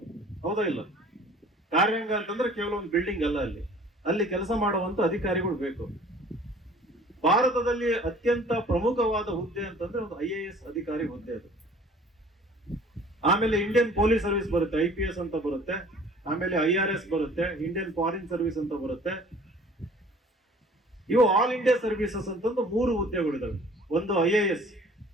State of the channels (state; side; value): normal; both; correlation 0.50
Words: ಹೌದಾ ಇಲ್ಲ? ಕಾರ್ಯಾಂಗ ಅಂತಂದ್ರೆ ಕೇವಲ ಒಂದು ಬಿಲ್ಡಿಂಗ್ ಅಲ್ಲ, ಅಲ್ಲಿ ಕೆಲಸ ಮಾಡುವಂತ ಅಧಿಕಾರಿಗಳು ಬೇಕು. ಭಾರತದಲ್ಲಿ ಅತ್ಯಂತ ಪ್ರಮುಖವಾದ ಹುದ್ದೆ ಅಂತಂದ್ರೆ ಒಂದು IAS ಅಧಿಕಾರಿ ಹುದ್ದೆ ಅದು. ಆಮೇಲೆ ಇಂಡಿಯನ್ ಪೊಲೀಸ್ ಸರ್ವಿಸ್ ಬರುತ್ತೆ, IPS ಅಂತ ಬರುತ್ತೆ. ಆಮೇಲೆ IRS ಬರುತ್ತೆ, ಇಂಡಿಯನ್ ಫಾರಿನ್ ಸರ್ವಿಸ್ ಅಂತ ಬರುತ್ತೆ. ಇವು ಆಲ್ ಇಂಡಿಯಾ ಸರ್ವಿಸಸ್ ಅಂತಂದು 3 ಹುದ್ದೆಗಳಿದಾವೆ. ಒಂದು IAS,